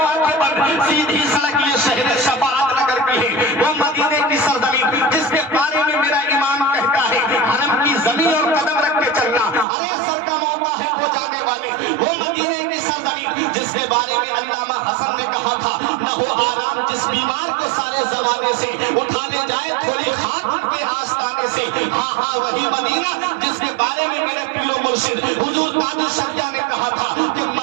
آنکھیں بند, سیدھی سڑک یہ شہر شفاعت نگر کی ہے. وہ مدینے کی سرزمین جس کے بارے میں میرا امام کہتا ہے حرم کی زمین اور قدم رکھ کے چلنا ارے سر کا موقع ہے ہو جانے والے. وہ مدینے کی سرزمین جس کے بارے میں علامہ حسن نے کہا تھا نہ ہو آرام جس بیمار کو سارے زمانے سے اٹھانے جائے تھوڑی خاک کے آستانے سے. ہاں ہاں وہی مدینہ جس کے بارے میں میرے پیر و مرشد حضور تاج الشریعہ نے کہا تھا کہ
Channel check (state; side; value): drops out; left; at 9.7 s